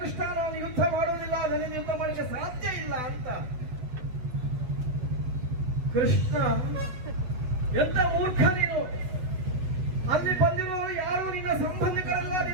ಕೃಷ್ಣ ನಾನು ಯುದ್ಧ ಮಾಡುವುದಿಲ್ಲ, ಅದನ್ನು ಯುದ್ಧ ಮಾಡಲಿಕ್ಕೆ ಸಾಧ್ಯ ಇಲ್ಲ ಅಂತ. ಕೃಷ್ಣ ಎಂತ ಮೂರ್ಖ ನೀನು! ಅಲ್ಲಿ ಬಂದಿರುವವರು ಯಾರು ನಿನ್ನ ಸಂಬಂಧಿಕರಲ್ಲ,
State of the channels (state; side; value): late; left; 8.0 ms